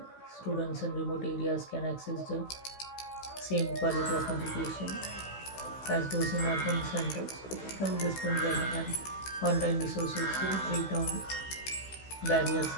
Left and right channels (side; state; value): right; late; 16 ms